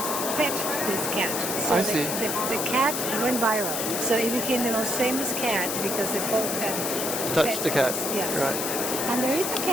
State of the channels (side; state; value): left; noise; hiss, 2 dB below the sound